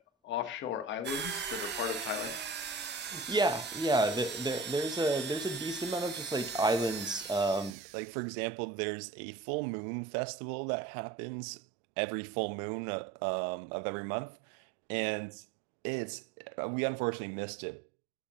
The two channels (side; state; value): left; drops out; at 7.8 s